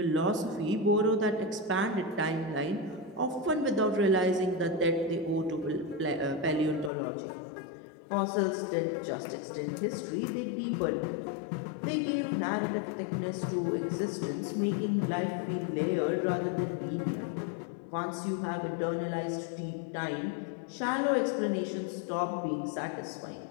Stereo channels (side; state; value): right; drops out; at 6.9 s